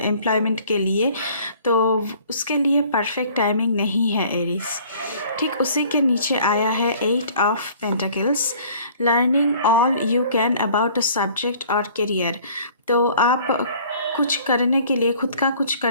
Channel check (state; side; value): inverted; both; correlation -0.53